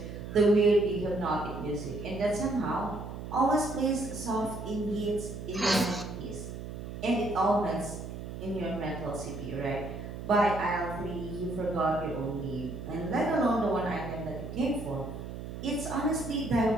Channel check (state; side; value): noise; right; hum, 9 dB below the sound